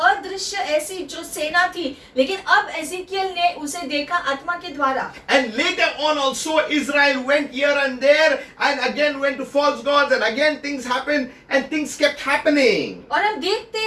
ऐसी जो सेना थी, लेकिन अब एजेकियल ने उसे देखा आत्मा के द्वारा। And later on also Israel went here and there and again went to false gods and again things happened and things kept happening. और हम देखते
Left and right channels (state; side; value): identical; both; correlation 1.00